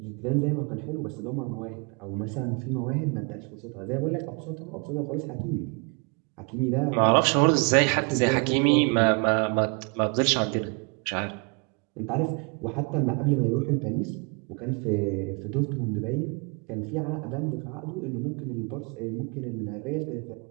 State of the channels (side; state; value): left; quieter; 33.6 dB